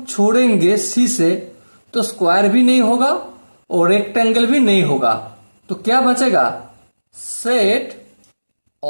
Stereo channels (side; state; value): both; inverted; correlation -1.00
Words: छोड़ेंगे सी से तो स्क्वायर भी नहीं होगा और रेक्टेंगल भी नहीं होगा। तो क्या बचेगा, set